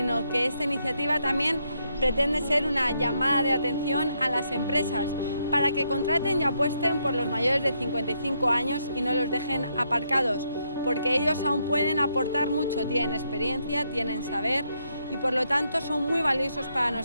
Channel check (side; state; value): both; inverted; correlation -0.77